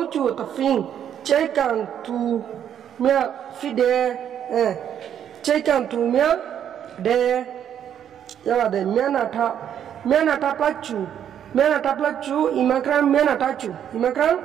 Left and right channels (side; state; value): left; quieter; 9.4 dB